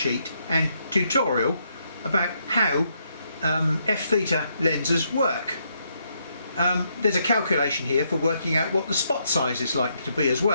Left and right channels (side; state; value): both; inverted; correlation -0.76